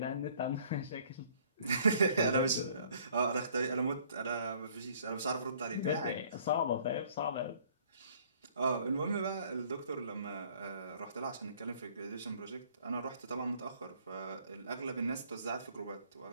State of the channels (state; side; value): inverted; both; correlation -0.58